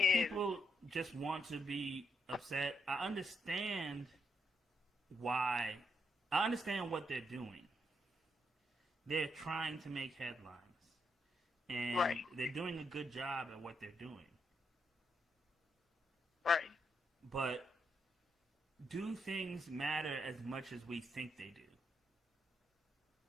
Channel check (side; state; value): both; normal; correlation 0.79